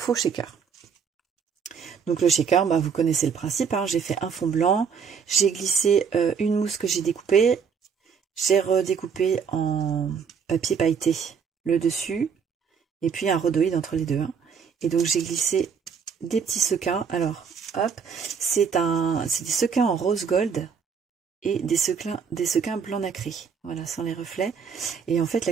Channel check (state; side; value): quieter; left; 6.4 dB